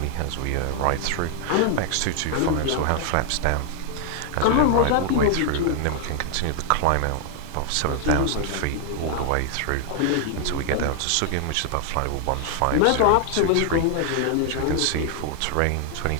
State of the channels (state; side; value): different; both; correlation 0.00